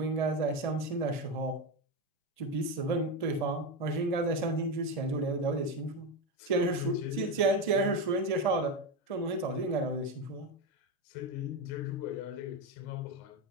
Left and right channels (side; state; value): right; late; 6.2 ms